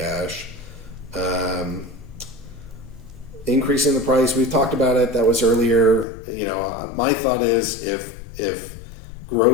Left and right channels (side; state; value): right; drops out; at 6.1 s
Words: Increasing the price, we've talked about it. That was earlier. My thought is if